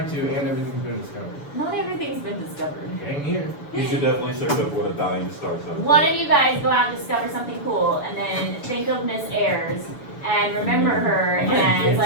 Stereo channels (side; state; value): right; late; 7.0 ms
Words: to, and everything's been discovered. Not everything's been discovered. Dang here. You should definitely search up what a dying star sounds One like. of you guys go out and discover something cool, and then think of Miss Ayers, and remember her, and it's